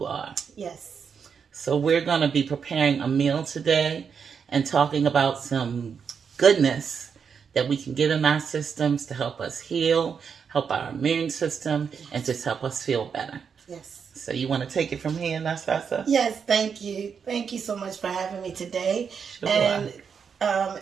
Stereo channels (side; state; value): left; quieter; 6.5 dB